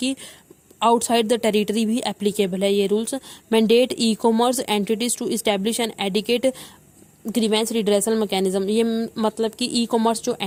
आउटसाइड द टेरिटरी भी एप्लीकेबल है ये rules. Mandate e commerce entities to establish an adequate grievance redressal mechanism. ये मतलब कि ई कॉमर्स जो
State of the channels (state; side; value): identical; both; correlation 1.00